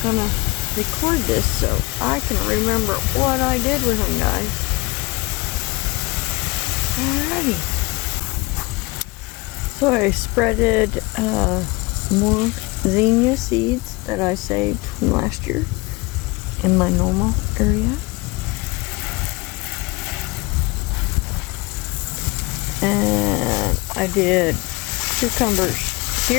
gonna record this so I can remember what I did with them, guys. Alrighty. So I spreaded more zinnia seeds that I saved from last year in my normal area. And I did cucumbers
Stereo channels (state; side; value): quieter; right; 24.9 dB